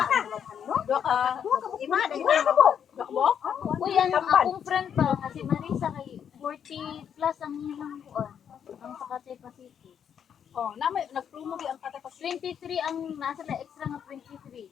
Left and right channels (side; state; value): right; quieter; 8.3 dB